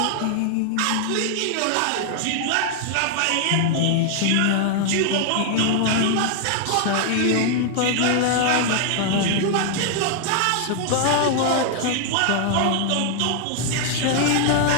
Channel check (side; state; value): both; different; correlation 0.00